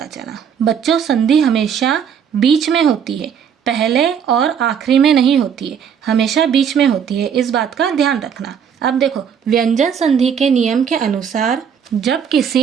चला। बच्चों, संधि हमेशा बीच में होती है, पहले और आखिरी में नहीं होती है, हमेशा बीच में होती है। इस बात का ध्यान रखना। अब देखो, व्यंजन संधि के नियम के अनुसार जब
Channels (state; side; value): quieter; left; 7.7 dB